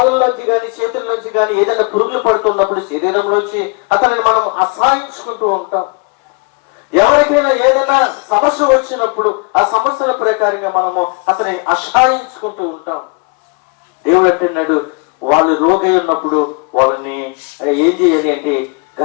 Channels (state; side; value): quieter; right; 32.8 dB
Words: కానీ చేతుల్లోంచి కానీ ఏదైనా పురుగులు పడుతున్నప్పుడు శరీరంలోంచి అతనిని మనం అసహాయించుకుంటూ ఉంటాం. ఎవరికైనా ఏదైనా సమస్య వచ్చినప్పుడు ఆ సమస్యల ప్రకారంగా మనము అతని అసహాయించుకుంటూ ఉంటాం. దేవుడు అంటున్నాడు, వాళ్ళు రోగి ఉన్నప్పుడు వాళ్ళని ఏం చేయాలి అంటే